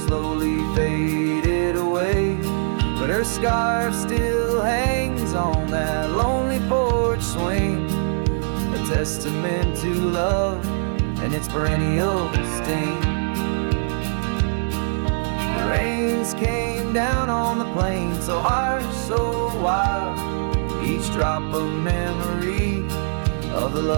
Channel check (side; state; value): left; silent; 64 dB below the other